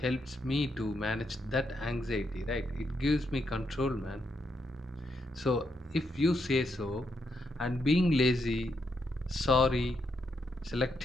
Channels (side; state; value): both; normal; correlation 0.80